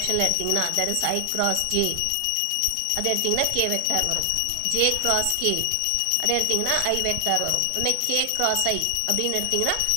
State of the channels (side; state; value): both; different; correlation 0.00